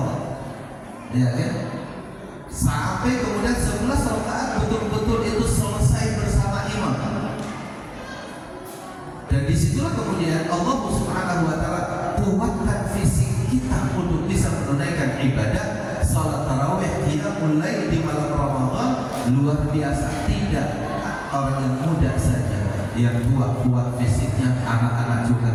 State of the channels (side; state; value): both; identical; correlation 1.00